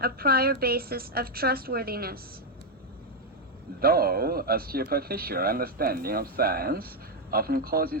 a prior basis of trustworthiness. Though a superficial understanding of science often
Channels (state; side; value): normal; both; correlation 0.02